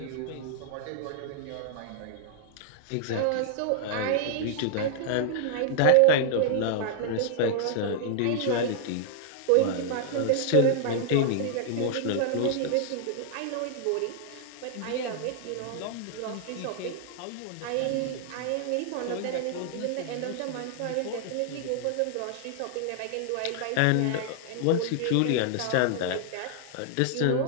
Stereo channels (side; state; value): both; different; correlation -0.01